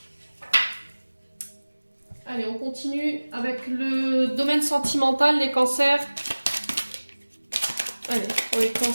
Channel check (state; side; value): inverted; both; correlation -1.00